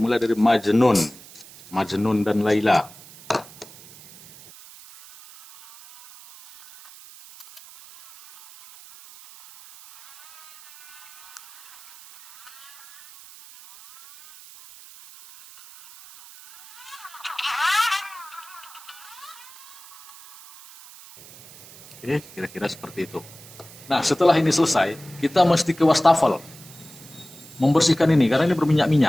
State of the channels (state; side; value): noise; right; hiss, 20 dB below the sound